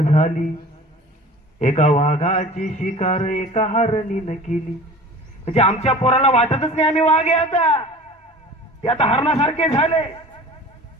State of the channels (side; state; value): both; normal; correlation 0.41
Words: झाली, एका वाघाची शिकार एका हरणीनं केली. म्हणजे आमच्या पोराला वाटतच नाही आम्ही वाघ आहे, आता ते आता हरणासारखे झाले.